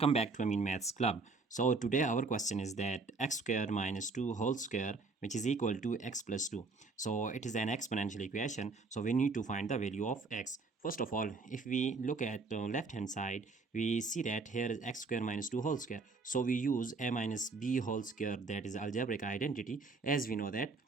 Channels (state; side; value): quieter; left; 3.9 dB